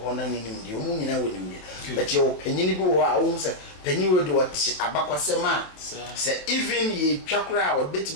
na nim die omu nyina woni mbi but ye opanyini bi wo a wo se panyin wo de wati abakwasema se even ye twakra o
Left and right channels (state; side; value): late; right; 27 ms